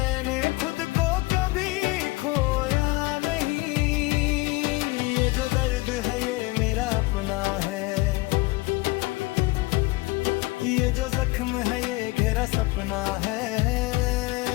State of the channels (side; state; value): right; quieter; 21.4 dB